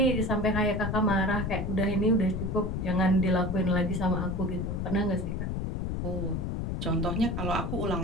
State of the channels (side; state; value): left; noise; rumble, 2 dB below the sound